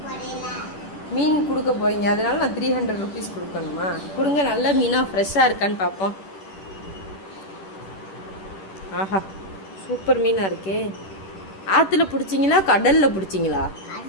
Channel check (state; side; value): late; right; 10 ms